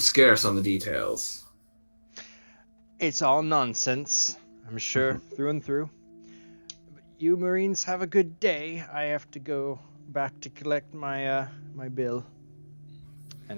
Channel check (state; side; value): inverted; both; correlation -1.00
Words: on the details. It's all nonsense, I'm sure, through and through. But you Marines have a good day. I have to go back to collect my my bill.